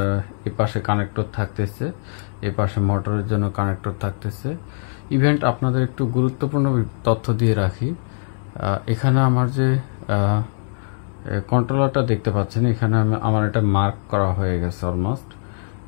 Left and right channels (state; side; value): silent; right; digital silence